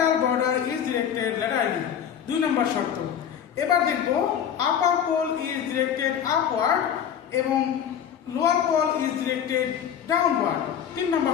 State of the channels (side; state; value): right; quieter; 8.8 dB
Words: border is directed laterally, 2 নম্বর শর্ত। এবার দেখবো upper pole is directed upward এবং lower pole is directed downward, 3 নম্বর